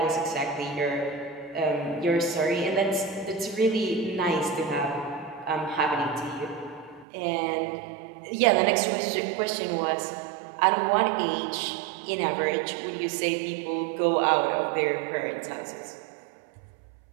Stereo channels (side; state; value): left; drops out; at 7.1 s